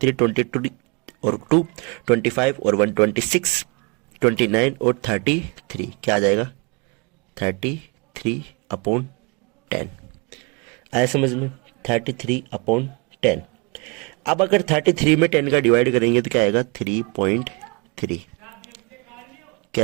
22 और 2 25 और 1 26, 29 और 33, क्या आ जाएगा 33/10। आया समझ में, 33/10। अब अगर 33 में 10 का डिवाइड करेंगे तो क्या आएगा 3.3,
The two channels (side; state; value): left; quieter; 29.9 dB